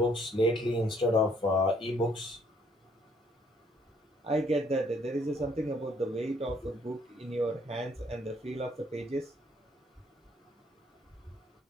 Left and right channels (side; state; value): both; normal; correlation 0.65